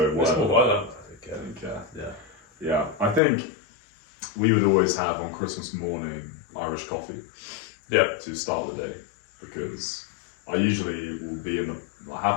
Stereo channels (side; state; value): right; drops out; at 3.2 s